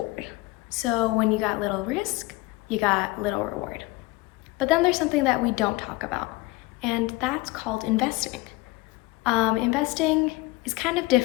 So when you got little risk, you got little reward. But then there's something that we don't talk about, and that's called investing. Investing is kind of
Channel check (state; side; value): quieter; right; 20.6 dB